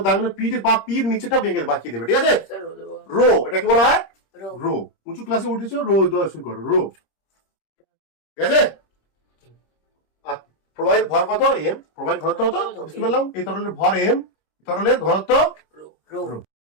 দাগনে পিঠে বা পির নিচেটা বেঁকে বাঁকিয়ে দেবে, ঠিক আছে, রো, এটাকে বলা হয় রো। উঁচু ক্লাসে উঠেছো, রো দেওয়া শুরু করো, রো, ঠিক আছে। আর প্রবাহের ভর কত, এম, প্রবাহের ঘনত্ব কত বুঝতে পারলাম, এই তরলের ভর এম, তরলের ঘনত্ব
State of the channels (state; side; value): late; right; 26 ms